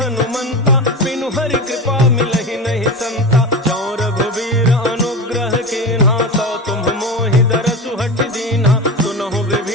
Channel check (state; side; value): normal; both; correlation 0.25